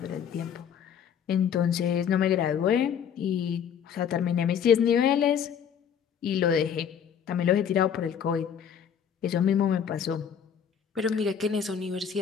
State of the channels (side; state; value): right; quieter; 8.1 dB